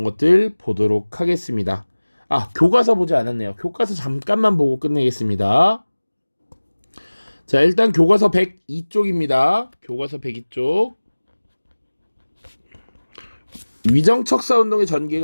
것들 보도록 하겠습니다. 교과서 보지 않았네요. 교과서 잠깐만 보고 끝내겠습니다. 자, 일단 교과서 102쪽입니다. 교과서 102쪽. 위정척사운동의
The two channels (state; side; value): inverted; both; correlation -1.00